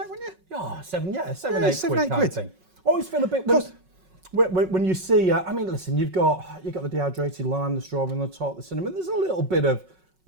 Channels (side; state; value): left; late; 5.4 ms